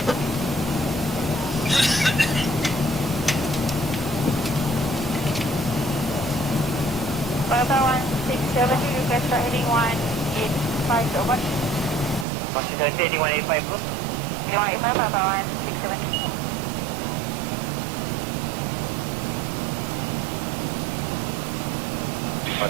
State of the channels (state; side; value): drops out; left; at 12.2 s